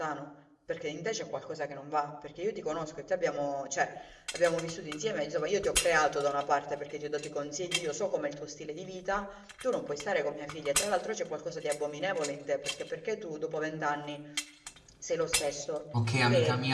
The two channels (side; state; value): both; identical; correlation 1.00